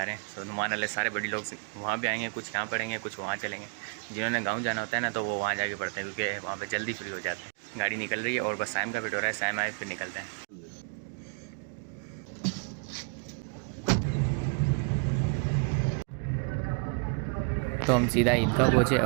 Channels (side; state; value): left; quieter; 39.3 dB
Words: रहे हैं। तो नुमान वाले सारे बड़े लोग वहाँ भी आएंगे, कुछ यहाँ पढ़ेंगे, कुछ वहाँ चलेंगे। जिन्होंने गाँव जाना होता है ना तो वो वहाँ जाके पढ़ते हैं क्योंकि वहाँ पर जल्दी फ्री हो जाते हैं। गाड़ी निकल रही है और बस शाम का वेट हो रहा है, शाम आए फिर निकलते हैं। तो हम सीधा ईदगाह पहुँचे